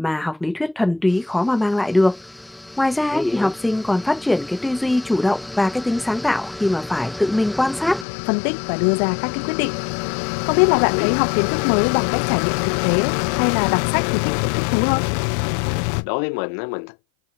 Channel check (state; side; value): drops out; right; at 8.1 s